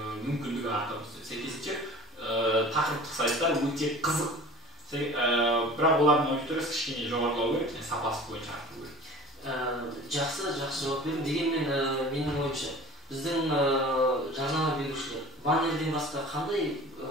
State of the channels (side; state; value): both; normal; correlation 0.41